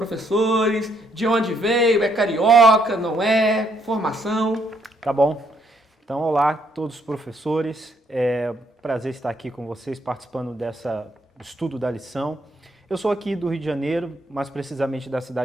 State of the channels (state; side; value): normal; both; correlation 0.71